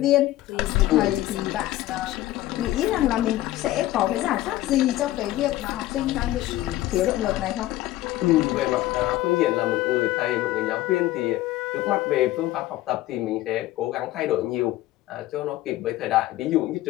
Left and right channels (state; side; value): quieter; right; 15.8 dB